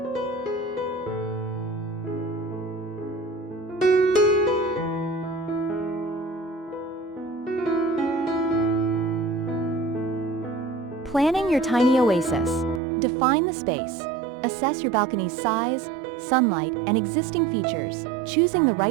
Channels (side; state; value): left; drops out; at 12.8 s